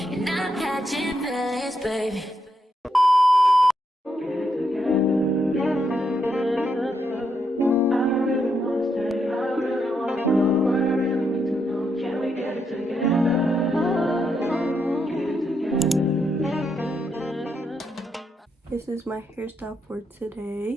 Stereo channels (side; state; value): both; normal; correlation 0.80